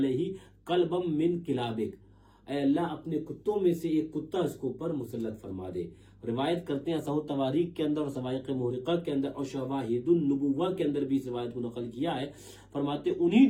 قلبم من کلابک، اے اللہ اپنے کتوں میں سے ایک کتا اس کو پر مسلط فرما دے۔ روایت کرتے ہیں صحیح تواریخ کے اندر اور سوائق محرقہ کے اندر اور شواہد النبوہ کے اندر بھی اس روایت کو نقل کیا ہے، فرماتے انہی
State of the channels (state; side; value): identical; both; correlation 1.00